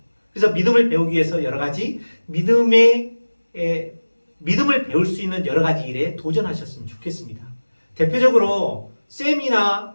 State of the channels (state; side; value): inverted; both; correlation -1.00